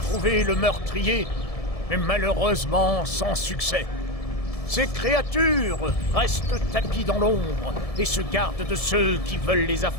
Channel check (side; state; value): right; late; 1.7 ms